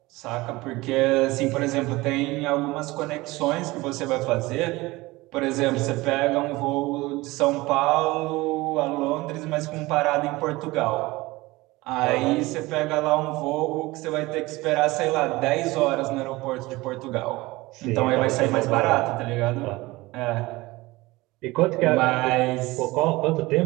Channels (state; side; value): quieter; left; 20.7 dB